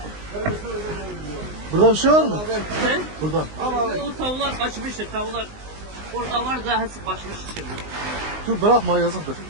Burada bir şey var mı? He? Burada. O tavuklar kaçmıştır. Tavuklar orada var da hepsi kaçmış şimdi. Dur bırakma yazıktır.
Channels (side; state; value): left; late; 19 ms